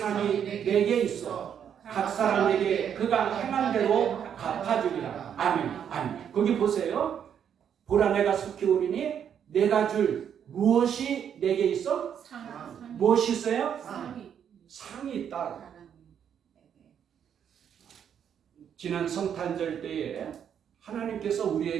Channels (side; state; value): left; quieter; 8.5 dB